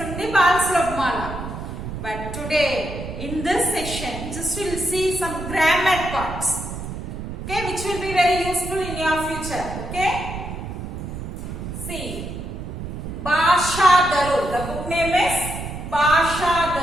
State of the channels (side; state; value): right; noise; rumble, 8 dB below the sound